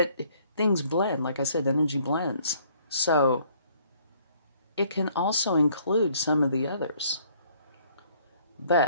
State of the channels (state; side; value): inverted; both; correlation -0.62